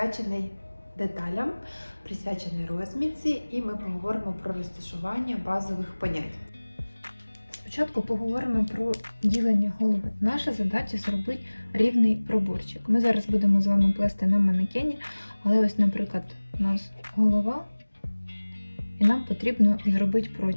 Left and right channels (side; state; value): both; inverted; correlation -1.00